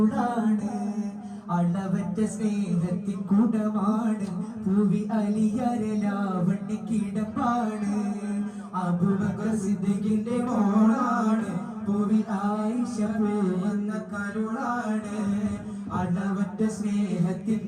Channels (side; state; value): both; identical; correlation 1.00